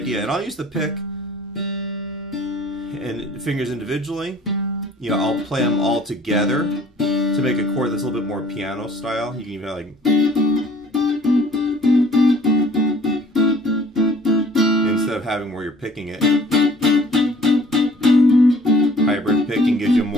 And I'll use the pick and fingers individually. I'll play them all together to make a chord that's a little bit more piano style. You can even have like, instead of having where you're picking it. Hybrid picking gives you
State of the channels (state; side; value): normal; both; correlation 0.53